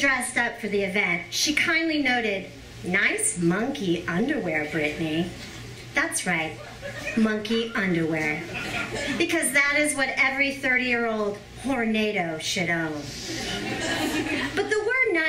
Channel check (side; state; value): both; identical; correlation 1.00